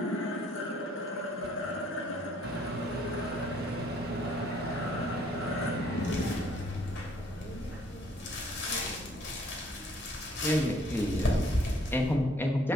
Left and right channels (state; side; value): normal; both; correlation 0.62